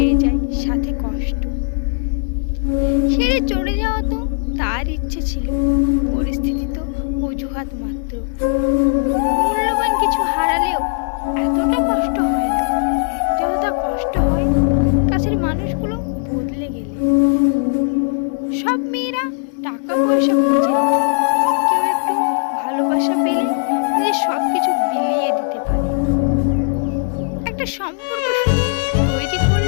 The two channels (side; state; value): right; silent; digital silence